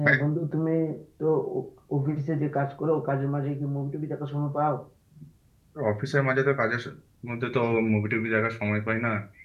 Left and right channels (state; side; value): identical; both; correlation 1.00